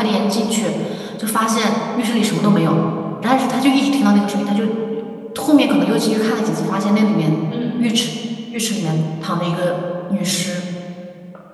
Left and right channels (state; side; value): identical; both; correlation 1.00